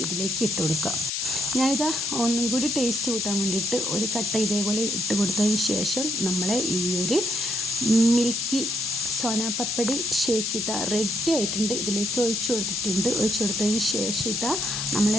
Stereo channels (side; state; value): left; noise; hiss, 1 dB below the sound